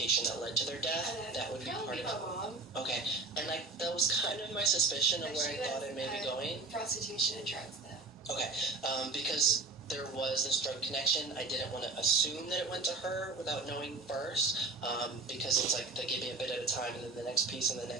that led to their death, that would be part of it. My mom. Okay, and that was kind of my suspicion of where I thought it may be going. Prostitution and drugs, though. Okay, because there was this drug connection, I didn't want to assume that it went to her without knowing first, because it's like they give me a bit at a time and then the next piece and the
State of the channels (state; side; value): quieter; left; 3.8 dB